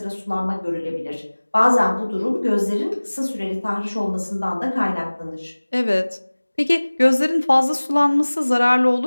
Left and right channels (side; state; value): both; inverted; correlation -1.00